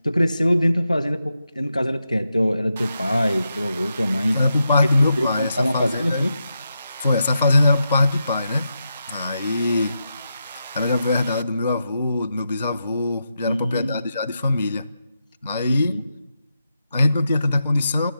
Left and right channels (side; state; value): both; inverted; correlation -0.86